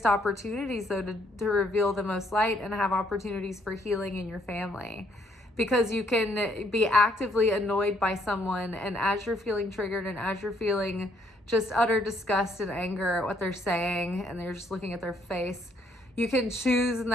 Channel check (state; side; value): normal; both; correlation 0.68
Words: opportunities, though, to reveal the most light and have opportunities for healing in your family. Because you can be actively annoyed by someone, and as you're feeling triggered and as you're feeling just utter disgust and anger at what they're saying, and they're just looking at their face, you can choose in